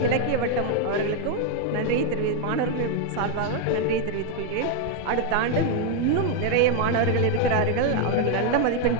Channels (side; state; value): both; different; correlation 0.01